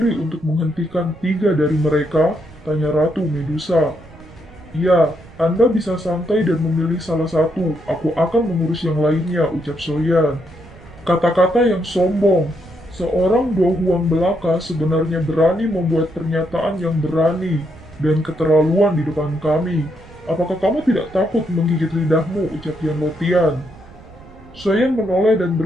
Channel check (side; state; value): right; noise; rumble, 21 dB below the sound